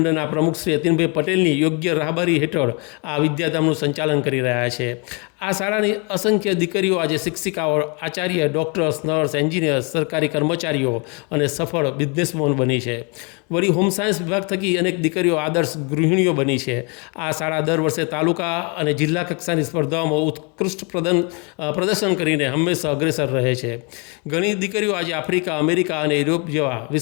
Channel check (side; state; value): right; quieter; 33.0 dB